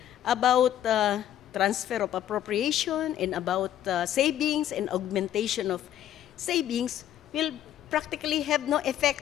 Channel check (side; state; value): right; quieter; 11.4 dB